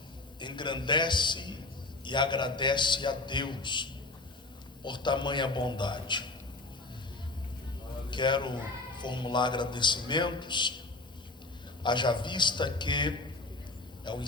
engrandece e agradece a Deus por tamanha bondade. Quero formular agradecimentos, haja vista que é o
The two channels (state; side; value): quieter; right; 3.1 dB